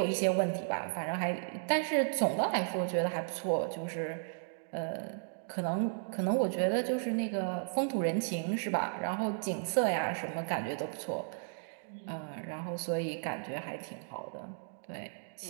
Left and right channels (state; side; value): silent; left; digital silence